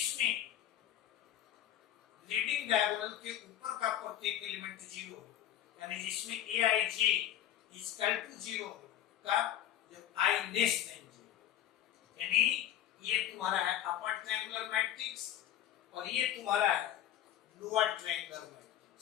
लीडिंग डायगोनल के ऊपर का प्रत्येक एलिमेंट 0 हो, यानी जिसमें Aij is equal to 0 का जब I less than 0, यानी ये तुम्हारा है अपर ट्रायंगुलर मैट्रिक्स और ये तुम्हारा है लोअर ट्रायंगुलर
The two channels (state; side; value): quieter; right; 11.7 dB